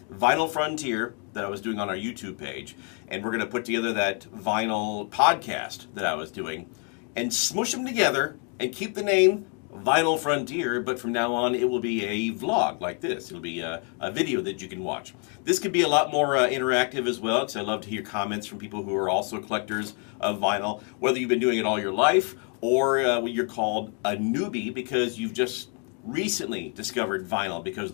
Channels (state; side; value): quieter; right; 38.5 dB